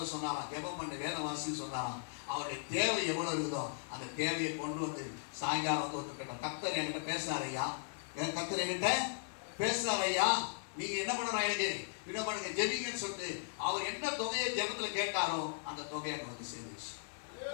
சொன்னாராம், ஜெபம் பண்ண வேத வாசின்னு சொன்னாராம். அவருடைய தேவை எவ்வளவு இருக்குதோ அந்த தேவையை கொண்டு வந்து சாயங்காலம் வந்து ஒத்துக்கிட்டோம். கர்த்தர் என்கிட்ட பேசுறாரு ஐயா, கர்த்தர் என்கிட்ட பேசுறாரு ஐயா, நீங்க என்ன பண்ணணும், எனக்கு என்ன பண்ணுங்க, ஜெபிங்கன்னு சொல்லிட்டு அவர் என்ன தொகையை ஜெபத்துல கேட்டாரோ அந்த தொகையை அங்க வந்து சேர்ந்துச்சு.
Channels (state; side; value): silent; right; digital silence